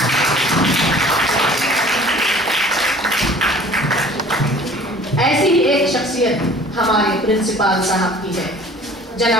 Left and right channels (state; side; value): normal; both; correlation 0.48